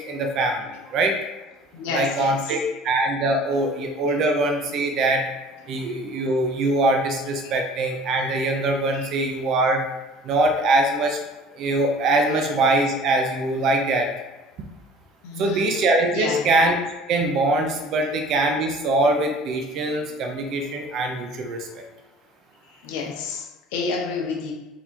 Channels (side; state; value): both; normal; correlation 0.48